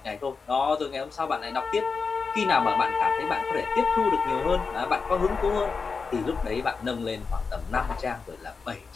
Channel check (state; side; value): quieter; right; 4.9 dB